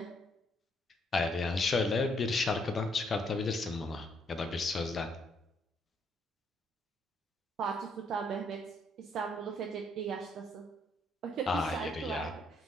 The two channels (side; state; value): both; normal; correlation 0.71